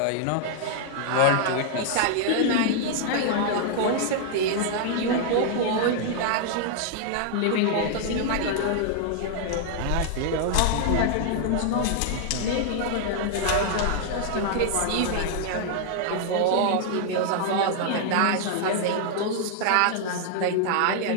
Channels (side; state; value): both; different; correlation 0.00